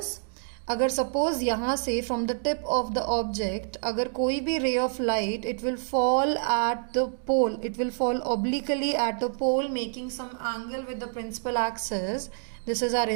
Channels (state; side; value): silent; left; digital silence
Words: अगर suppose यहाँ से from the tip of the object अगर कोई भी ray of light, it will fall at the pole, it will fall obliquely at a pole making some angle with the principal axis. This is our